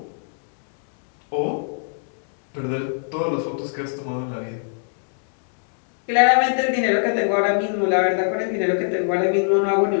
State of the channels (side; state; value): right; silent; digital silence